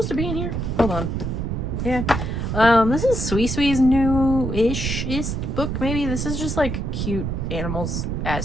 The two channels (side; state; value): right; noise; rumble, 2 dB below the sound